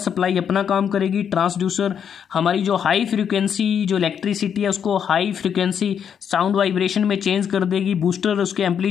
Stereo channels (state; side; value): quieter; right; 8.0 dB